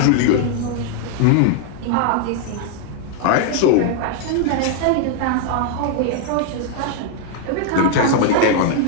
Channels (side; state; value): both; different; correlation 0.00